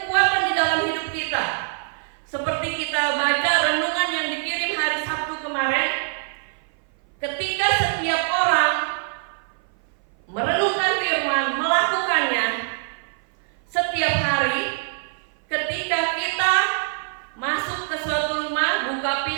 di dalam hidup kita. Seperti kita baca renungan yang dikirim hari Sabtu kemarin, ketika setiap orang merenungkan firman, melakukannya setiap hari, ketika kita masuk ke suatu rumah, buka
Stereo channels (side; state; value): left; silent; 58 dB below the other